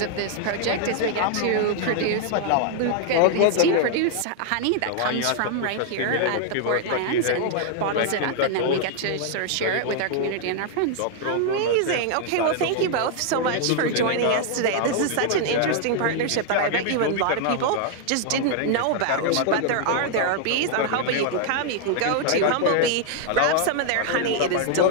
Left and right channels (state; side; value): different; both; correlation 0.00